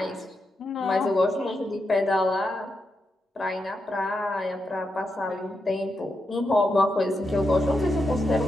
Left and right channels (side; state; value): both; normal; correlation 0.86